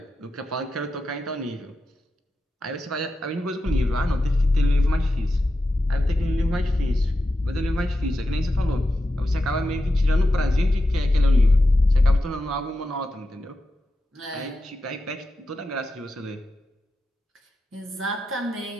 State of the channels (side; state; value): both; normal; correlation 0.90